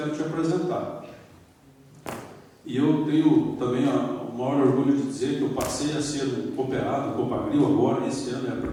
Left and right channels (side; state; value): both; identical; correlation 1.00